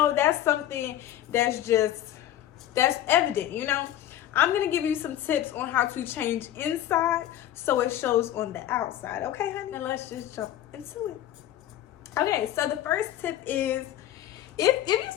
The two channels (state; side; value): quieter; right; 12.4 dB